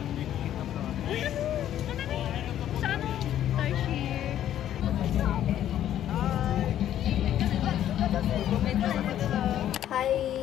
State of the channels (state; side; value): quieter; right; 11.3 dB